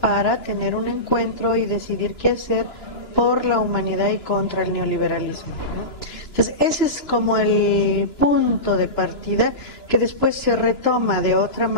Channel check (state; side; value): late; right; 2.9 ms